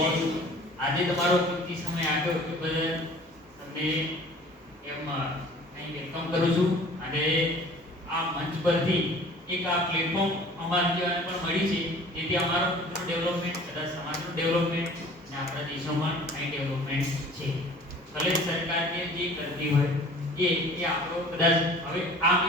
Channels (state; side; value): normal; both; correlation 0.47